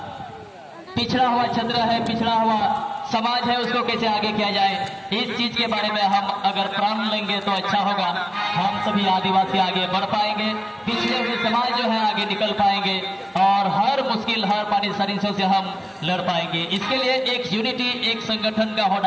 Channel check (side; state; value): both; identical; correlation 1.00